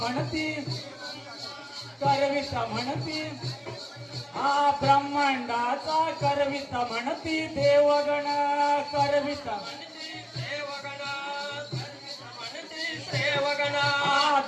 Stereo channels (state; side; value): identical; both; correlation 1.00